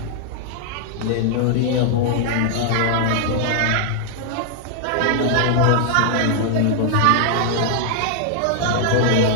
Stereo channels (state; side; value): different; both; correlation 0.00